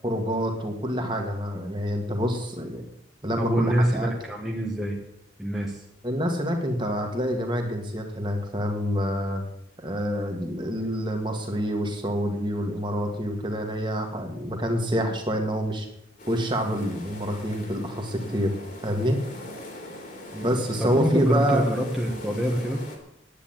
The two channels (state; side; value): normal; both; correlation 0.72